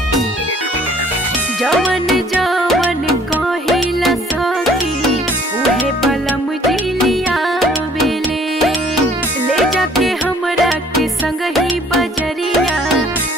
जवन जवन कहिला सखी उहे बलम जिलिया बेले ले जाके हमरा के संग ही बजरिया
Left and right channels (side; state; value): both; normal; correlation 0.56